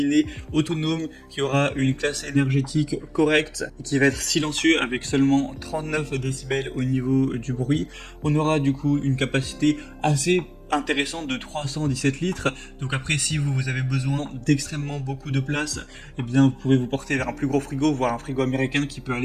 autonome qui aura une classe énergétique correcte et qui va être silencieux avec seulement 39 décibels au niveau du bruit. On aura du coup une capacité assez intéressante de 317 litres. Donc après, si vous avez besoin d'extrêmement beaucoup de place, eh bien vous pouvez vous porter vers un plus gros frigo, voire un frigo américain qui peut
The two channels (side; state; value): both; identical; correlation 1.00